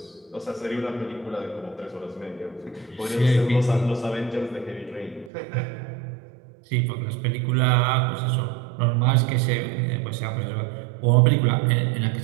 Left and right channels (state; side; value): drops out; left; at 5.3 s